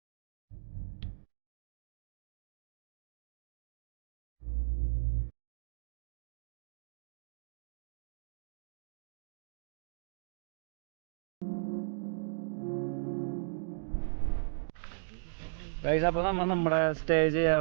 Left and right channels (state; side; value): silent; left; digital silence